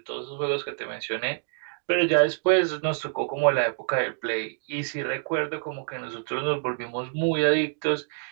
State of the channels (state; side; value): silent; left; digital silence